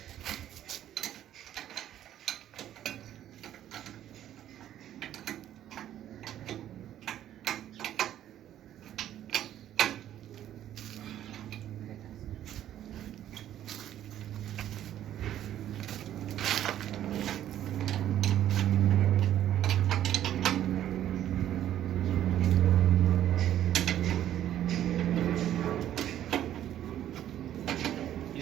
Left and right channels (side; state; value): left; quieter; 11.6 dB